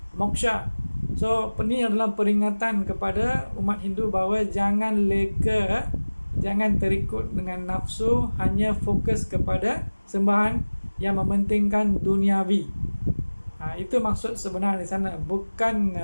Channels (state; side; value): inverted; both; correlation -1.00